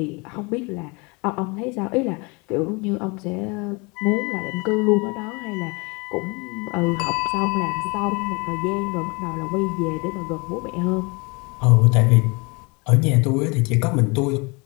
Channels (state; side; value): quieter; right; 29.0 dB